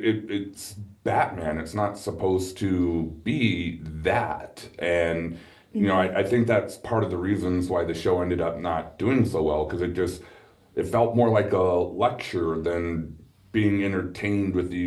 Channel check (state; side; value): identical; both; correlation 1.00